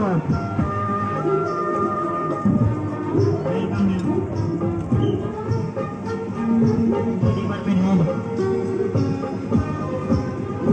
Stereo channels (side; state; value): both; identical; correlation 1.00